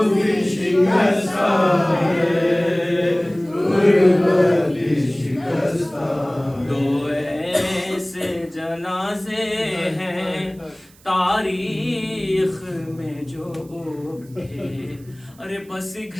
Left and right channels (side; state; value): right; noise; hiss, 27 dB below the sound